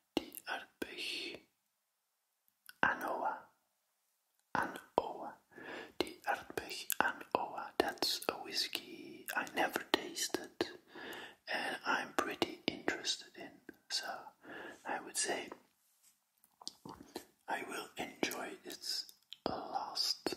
The Aardbeg Anoa. The Aardbeg Anoa. That's a whiskey I never tasted and I'm pretty interested in. So I would say I will enjoy this last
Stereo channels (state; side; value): identical; both; correlation 1.00